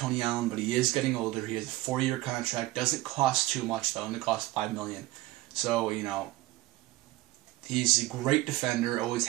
Allen, but he is getting older. He has a 4-year contract. Doesn't cost too much, though. Only costs $5 million. So, you know, he's a great defender, always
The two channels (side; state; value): left; quieter; 18.3 dB